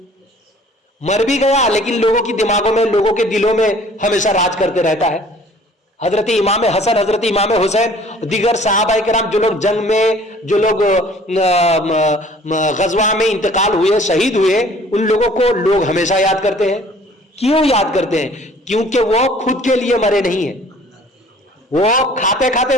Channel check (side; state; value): both; normal; correlation 0.53